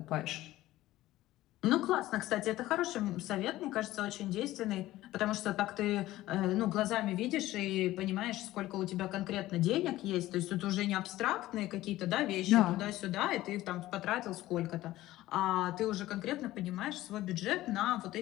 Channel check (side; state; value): right; quieter; 16.0 dB